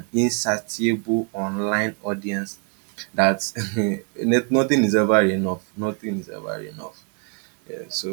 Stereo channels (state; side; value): quieter; left; 38.2 dB